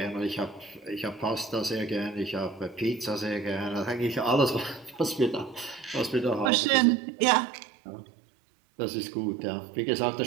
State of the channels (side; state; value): left; drops out; at 6.5 s